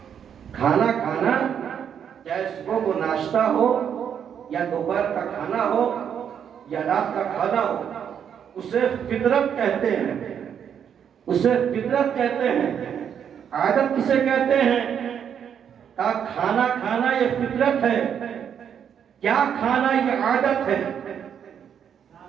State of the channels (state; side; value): quieter; left; 8.3 dB